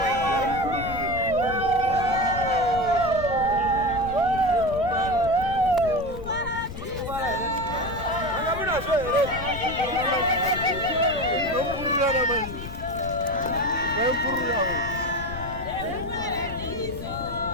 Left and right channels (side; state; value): left; noise; rumble, 10 dB below the sound